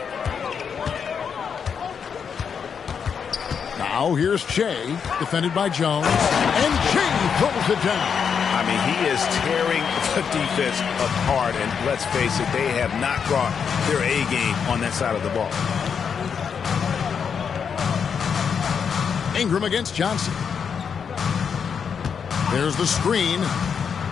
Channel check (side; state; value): right; quieter; 6.8 dB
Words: Now here's Shea, defended by Jones, and Shea throws it down. I mean, he is tearing the defense apart, and let's face it, they have not brought their A game on that side of the ball. Ingram against Johnson. There's the screen.